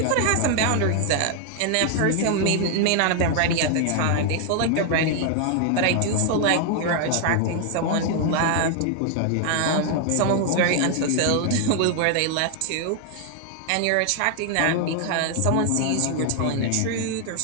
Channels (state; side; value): different; both; correlation 0.00